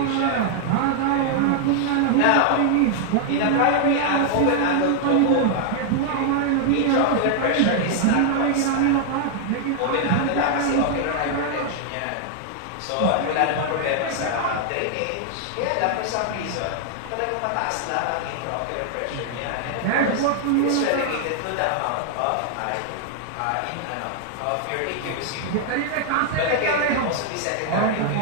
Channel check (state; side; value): different; both; correlation 0.00